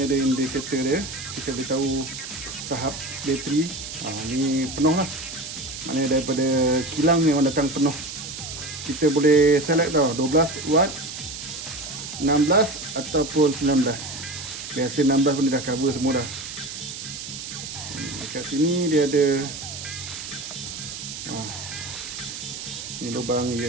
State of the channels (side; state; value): right; noise; hiss, 9 dB below the sound